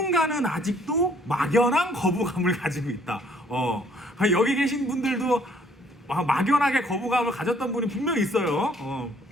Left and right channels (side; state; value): both; normal; correlation 0.62